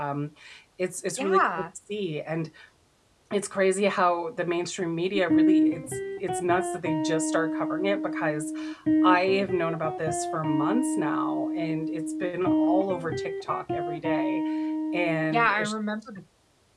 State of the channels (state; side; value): identical; both; correlation 1.00